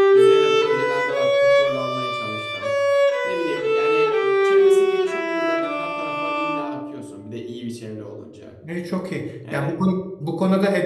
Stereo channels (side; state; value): both; identical; correlation 1.00